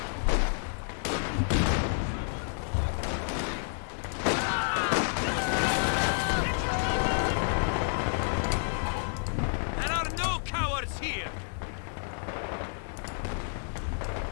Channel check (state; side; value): silent; right; digital silence